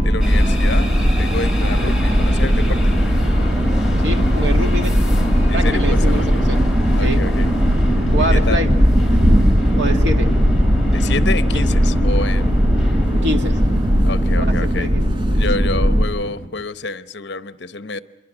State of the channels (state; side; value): normal; both; correlation 0.87